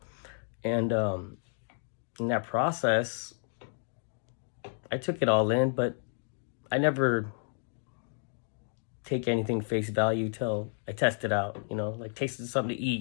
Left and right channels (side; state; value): right; silent; 57 dB below the other